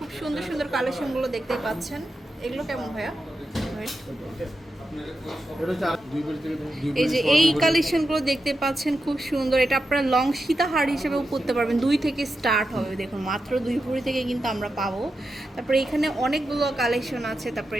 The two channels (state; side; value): normal; both; correlation 0.88